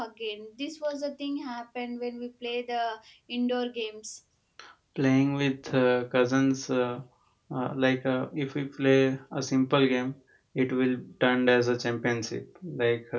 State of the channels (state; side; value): identical; both; correlation 1.00